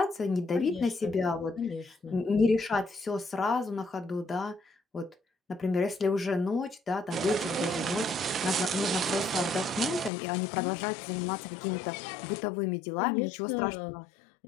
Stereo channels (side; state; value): right; drops out; at 10.1 s